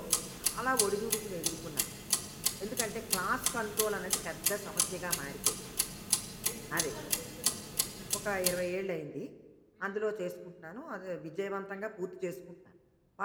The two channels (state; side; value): identical; both; correlation 1.00